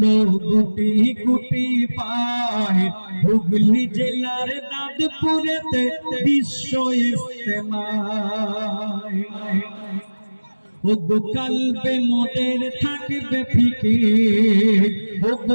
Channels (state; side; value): inverted; both; correlation -1.00